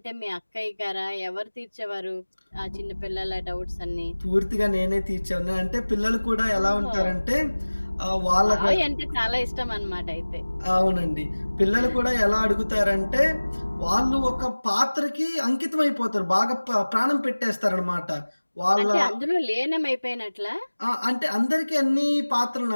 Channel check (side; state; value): both; inverted; correlation -1.00